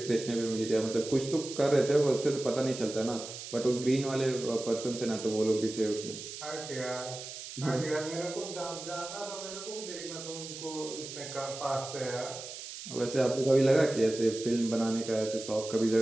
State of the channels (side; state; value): right; noise; hiss, 10 dB below the sound